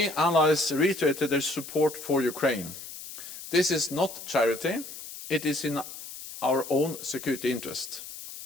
allies reiterated their support for Ukraine. This is not charity, it is in our own security interest.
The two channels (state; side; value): noise; left; hiss, 12 dB below the sound